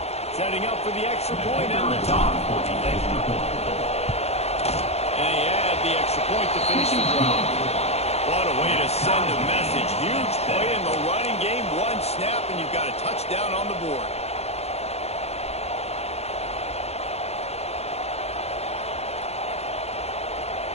Setting up for the extra point and the top. And he had the extra point to finish the drive. What a way to send a message. Huge play in the running game. One snap, and you've got a touchdown on the board.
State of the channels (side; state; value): right; late; 0.31 ms